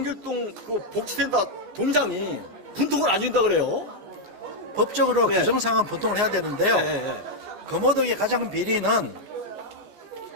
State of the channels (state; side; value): late; left; 14 ms